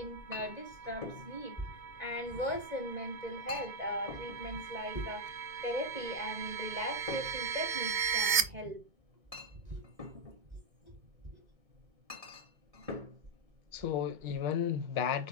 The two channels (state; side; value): late; left; 2.6 ms